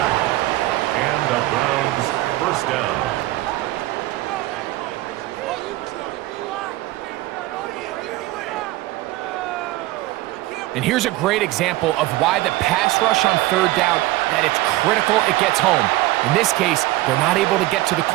And the Browns first down. And here's a great example of why the pass rush on third down, that it's critical it gets home. In this case, they're not able to get to the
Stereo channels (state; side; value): quieter; left; 17.8 dB